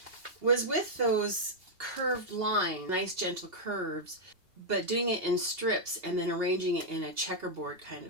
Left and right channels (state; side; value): late; left; 2.8 ms